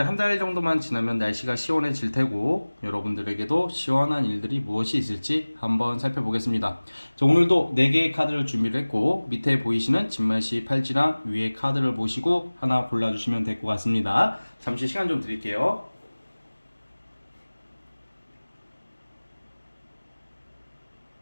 한 달 정도만 지나면 날씨가 시원해질 테고 여러분들에게도 시원한 일들이 무엇이 있을지 한번 살펴보겠습니다. 자, 오늘도 4개의 카드를 준비를 했고 밑에 보이시는 진말씨 팔찌랑 위에 카드를 보시고 하나 골라주시면 될 것 같습니다. 잠시 시간 좀 드릴게요.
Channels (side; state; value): both; inverted; correlation -1.00